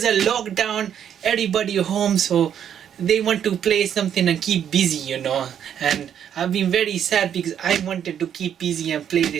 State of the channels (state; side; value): quieter; left; 9.1 dB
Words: of lockdown, everybody home, so they want to play something and keep busy, and I've been very sad because I wanted to keep busy and play